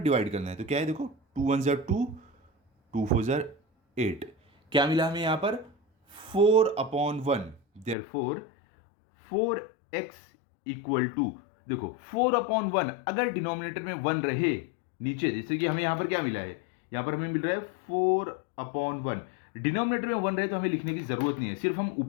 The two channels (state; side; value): drops out; right; at 8.0 s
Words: डिवाइड करना है। तो क्या है, देखो 2 × 1 = 2, 2 × 4 = 8। क्या मिला हमें यहाँ पर, 4/1। देयरफॉर 4x = देखो 4/1, अगर डिनोमिनेटर में 1 रहे नीचे, जैसे कि हमें यहाँ पर क्या मिला है, यहाँ पर हमें मिल रहा है 4/1। डिनोमिनेटर में 1 रहे तो हमें लिखने की जरूरत नहीं है, सिर्फ हम